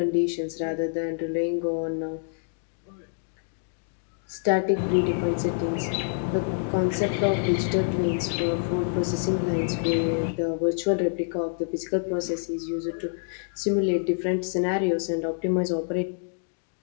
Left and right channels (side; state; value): right; silent; digital silence